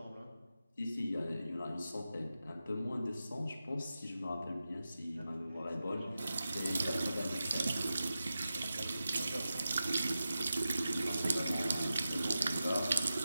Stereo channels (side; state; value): both; inverted; correlation -0.92